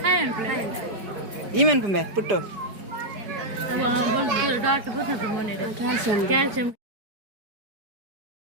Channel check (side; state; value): left; late; 4.5 ms